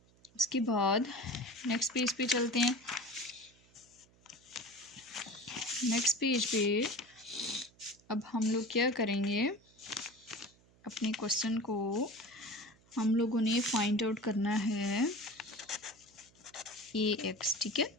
उसके बाद नेक्स्ट पेज पे चलते हैं। नेक्स्ट पेज पे अब हम लोग क्या करेंगे, अपने क्वेश्चन को हम लोगों ने फाइंड आउट करना है AX। ठीक है,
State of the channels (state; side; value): noise; right; hum, 29 dB below the sound